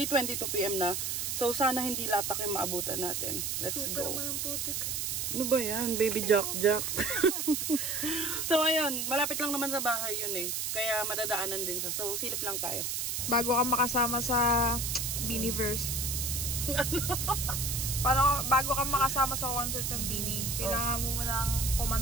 PM na. So sana hindi latak yung maabutan natin. Let's Super go. Super naman putik. Ano ba yan? Baby Jack. So ayun, malapit lang naman sa bahay yun eh. Kaya madadaanan din siya. So silip lang tayo. Bago ka makasama sa Beanieverse. Paano, bago ka makasama sa concert ng Beanie, kailangan mo nang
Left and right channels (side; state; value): right; noise; hiss, 1 dB below the sound